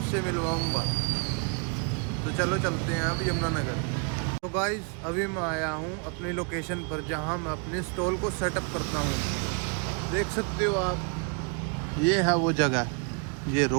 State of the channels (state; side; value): quieter; left; 36.0 dB